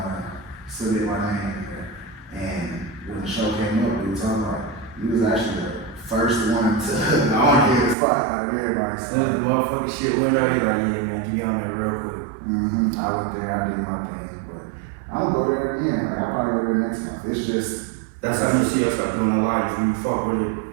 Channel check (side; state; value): left; drops out; at 8.0 s